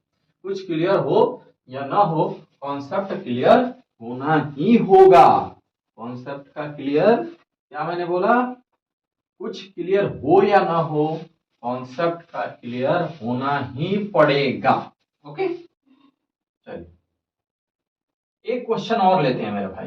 कुछ क्लियर हो या ना हो, कॉन्सेप्ट क्लियर होना ही होगा। कॉन्सेप्ट का क्लियर, क्या मैंने बोला, कुछ क्लियर हो या ना हो, कॉन्सेप्ट का क्लियर होना ही पड़ेगा। ओके, चलिए एक क्वेश्चन और लेते हैं मेरे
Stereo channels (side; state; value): both; identical; correlation 1.00